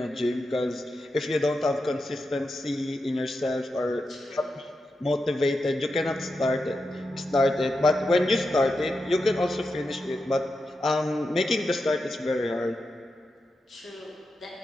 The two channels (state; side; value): normal; both; correlation 0.88